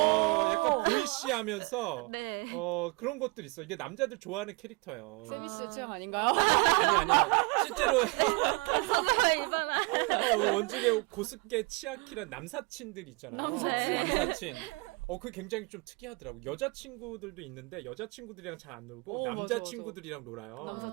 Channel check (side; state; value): left; quieter; 27.2 dB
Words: 약간 보이시하면서 네. 그런 것들 있어. 이게 남자들 좋아하는 캐릭터예요. 세미 씨의 취향 아닌가요? 아니요. 실제로 이바나. 원중에 고스케 치아키란 남사친들 있잖아요. 남사친. 남사친. 그게 굉장히 좀 특이하더라고. 여자친구들도 있는데 여자친구들이랑 잘 안 놀고 맞아, 남자친구들이랑 놀아요.